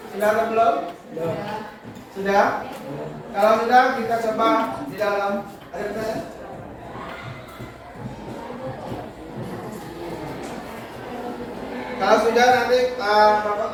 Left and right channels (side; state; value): both; identical; correlation 1.00